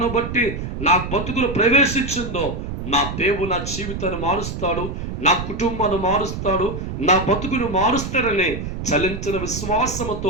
బట్టి నా బతుకులు ప్రవేశించిందో నా దేవుడు నా జీవితాన్ని మారుస్తాడు, నా కుటుంబాన్ని మారుస్తాడు, నా బతుకును మారుస్తాడని చలించిన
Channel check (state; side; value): noise; right; rumble, 6 dB below the sound